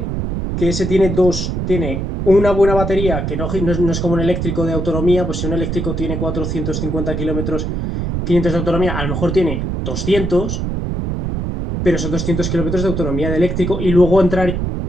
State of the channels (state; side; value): noise; right; rumble, 2 dB below the sound